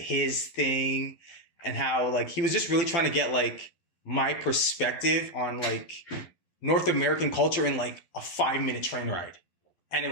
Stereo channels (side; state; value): right; late; 11 ms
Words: thing, and how like he was just really trying to get like my perspective on like North American culture in like a 5-minute train ride. And